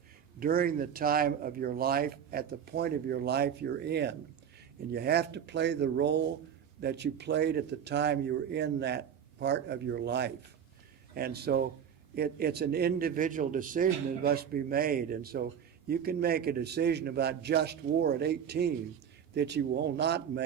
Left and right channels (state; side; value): quieter; left; 8.3 dB